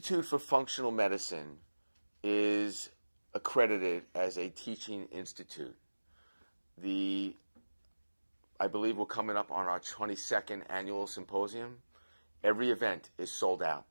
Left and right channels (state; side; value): inverted; both; correlation -1.00